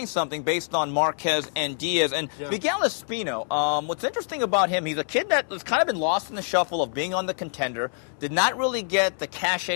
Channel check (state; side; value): silent; right; 57 dB below the other